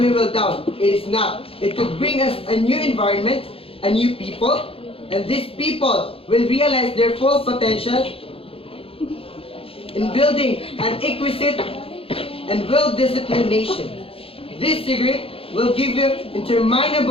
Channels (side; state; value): right; late; 0.27 ms